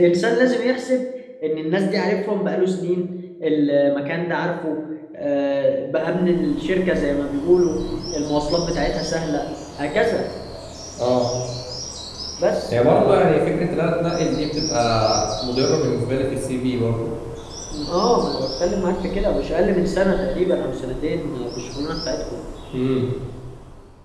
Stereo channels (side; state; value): both; identical; correlation 1.00